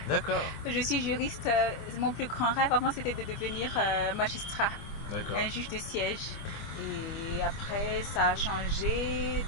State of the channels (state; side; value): late; right; 25 ms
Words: D'accord. Je suis juriste. Mon plus grand rêve avant c'était de devenir magistrat. D'accord. Un juge de siège. Et après ça a changé